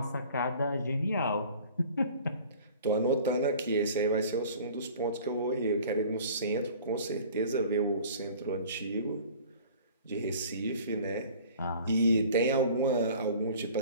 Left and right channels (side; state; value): both; inverted; correlation -0.47